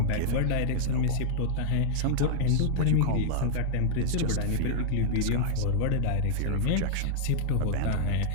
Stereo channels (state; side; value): different; both; correlation -0.01